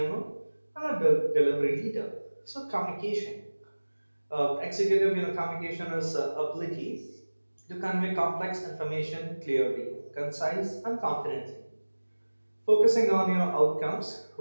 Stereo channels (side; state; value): both; inverted; correlation -1.00